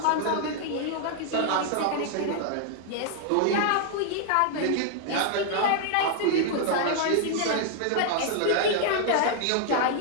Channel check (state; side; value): different; both; correlation 0.00